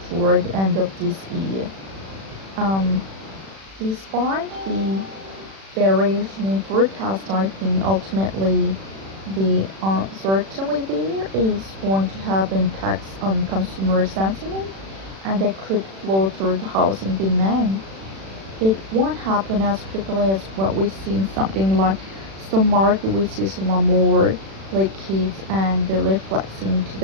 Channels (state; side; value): late; left; 36 ms